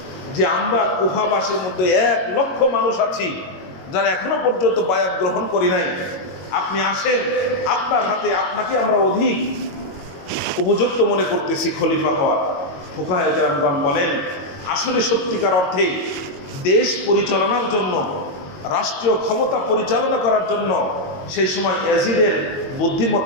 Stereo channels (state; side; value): late; right; 22 ms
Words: যে আমরা কুফাবাসীর মধ্যে 1 লক্ষ মানুষ আছি যারা এখনো পর্যন্ত বায়াত গ্রহণ করি নাই, আপনি আসেন, আপনার হাতে আপনাকে আমরা অধিক উপযুক্ত মনে করতেছি খলিফা হওয়ার। ফুকাহায়ে কেরামগণ বলেন আসলে সত্যিকার অর্থে দেশ পরিচালনার জন্য, রাষ্ট্রীয় ক্ষমতা পরিচালনা করার জন্য সেই সময় ইয়াজিদের